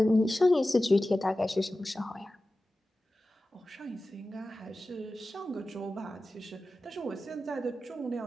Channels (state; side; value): normal; both; correlation 0.95